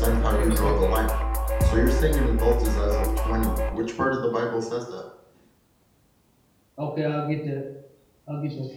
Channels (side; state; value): both; identical; correlation 1.00